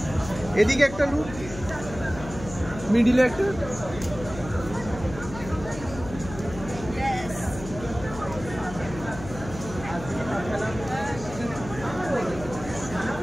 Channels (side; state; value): left; noise; hum, 12 dB below the sound